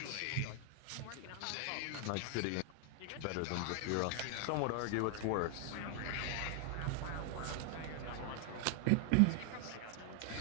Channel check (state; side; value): different; both; correlation 0.00